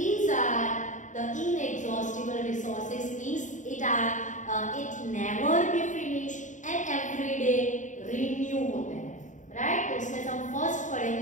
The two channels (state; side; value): late; right; 0.36 ms